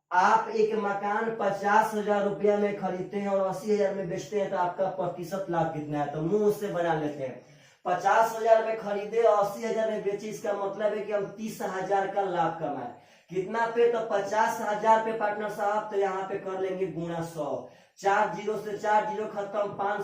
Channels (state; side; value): identical; both; correlation 1.00